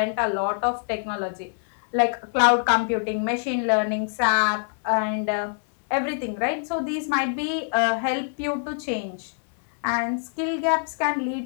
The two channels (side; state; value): right; silent; digital silence